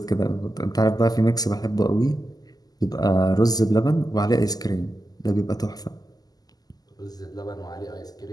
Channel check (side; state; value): right; late; 0.18 ms